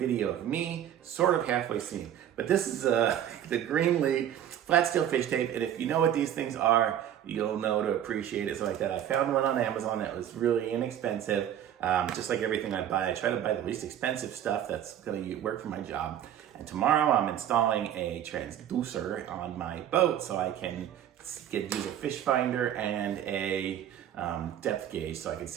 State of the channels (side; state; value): left; quieter; 10.5 dB